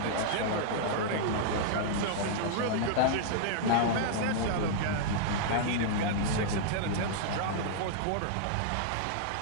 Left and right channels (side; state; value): both; different; correlation -0.01